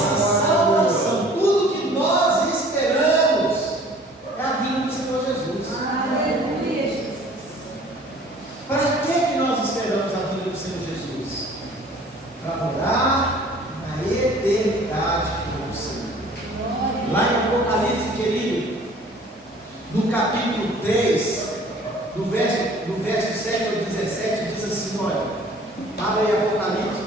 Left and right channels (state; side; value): normal; both; correlation 0.51